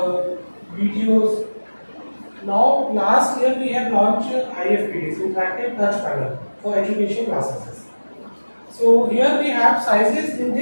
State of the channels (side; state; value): both; inverted; correlation -1.00